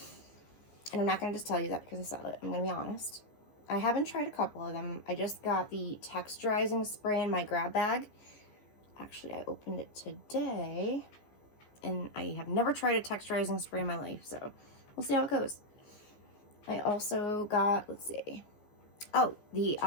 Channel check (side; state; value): right; late; 15 ms